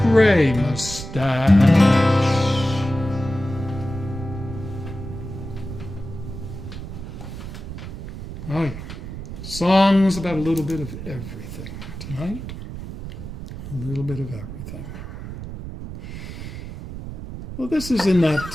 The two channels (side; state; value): right; noise; rumble, 10 dB below the sound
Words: gray mustache. Oh, yeah. Songs about a little bit of everything tonight. A little bit of everything. Well, this is in